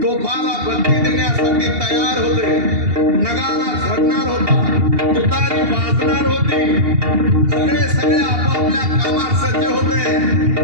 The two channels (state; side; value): late; left; 2.8 ms